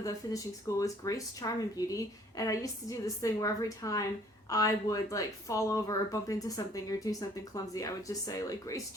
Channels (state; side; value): normal; both; correlation 0.58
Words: the finishing school is Grace, Charm, and Beauty, and I used to do this thing where every time I would like fall over or bump into something or do something clumsy, I would just say like Grace,